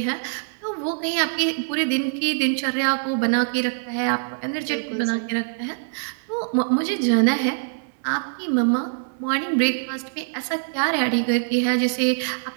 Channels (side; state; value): left; silent; digital silence